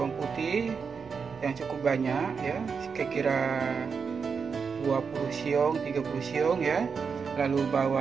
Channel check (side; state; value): left; quieter; 5.7 dB